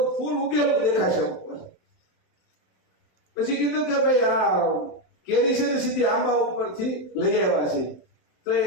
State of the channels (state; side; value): late; right; 27 ms